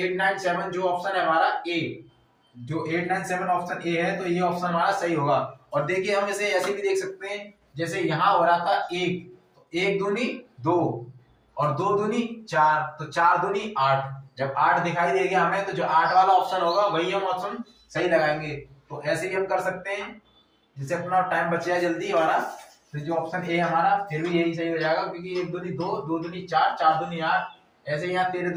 जो ऑप्शन है हमारा ए, जो 897 ऑप्शन ए है, तो ये ऑप्शन हमारा सही होगा। और देखिए हम इसे ऐसे भी देख सकते हैं, जैसे यहाँ हो रहा था 1, तो 1 दूनी 2 और 2 दूनी 4, तो 4 दूनी 8। जब 8 दिखाई देगा हमें तो जो 8 वाला ऑप्शन होगा वही हम ऑप्शन सही लगाएंगे। तो ऐसे भी हम कर सकते हैं, जिससे अपना टाइम बच जाए जल्दी हमारा। तो जो ऑप्शन ए हमारा फिर भी यही सही हो जाएगा, क्योंकि 1 दूनी 2, 2 दूनी 4, 4 दूनी 8। ऐसे यहाँ 13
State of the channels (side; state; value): both; identical; correlation 1.00